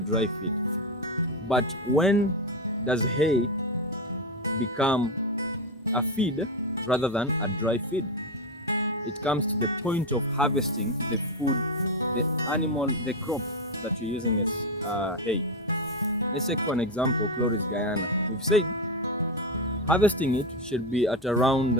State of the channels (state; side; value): normal; both; correlation 0.10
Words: feed, but when does hay become a feed rather than a dry feed? It comes to the point of harvesting the food, the animal, the crop that you're using as hay. Let's take for an example, Chloris Guyana. We've said harvesting it should be at around